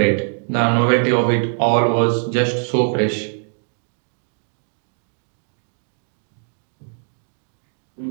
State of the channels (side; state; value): left; silent; digital silence